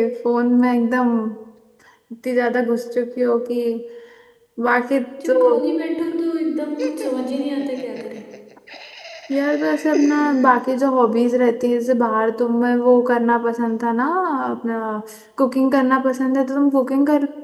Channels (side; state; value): both; identical; correlation 1.00